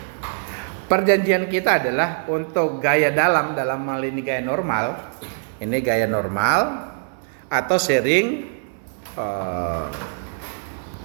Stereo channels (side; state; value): left; silent; 63 dB below the other